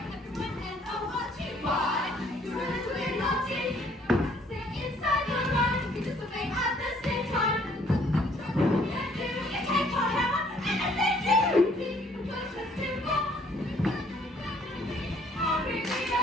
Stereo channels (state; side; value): normal; both; correlation 0.62